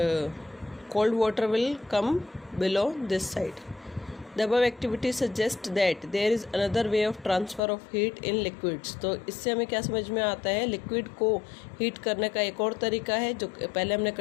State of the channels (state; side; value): drops out; right; at 7.6 s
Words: cold water will come below this side. The above activity suggests that there is another way of transfer of heat in liquids. तो इससे हमें क्या समझ में आता है, लिक्विड को हीट करने का एक और तरीका है, जो पहले हमने